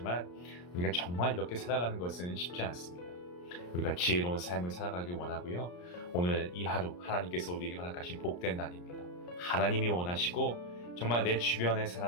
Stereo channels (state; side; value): late; right; 34 ms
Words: 우리가 정말 이렇게 살아가는 것은 쉽지 않습니다. 우리가 지혜로운 삶을 살아가길 원하고요. 오늘 이 하루 하나님께서 우리에게 허락하신 복된 날입니다. 하나님이 원하시고 정말 내 주변의